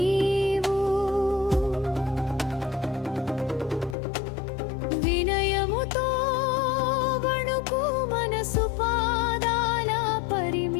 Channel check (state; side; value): drops out; right; at 4.0 s